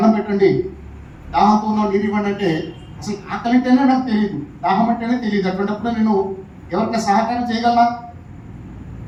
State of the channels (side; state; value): both; identical; correlation 1.00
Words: పెట్టండి, దాహంతో ఉన్నావు నీరు ఇవ్వండి అంటే, అసలు ఆకలి అంటేనే నాకు తెలియదు, దాహం అంటేనే తెలియదు. అటువంటిప్పుడు నేను ఎవరికైనా సహకారం చేయగలనా?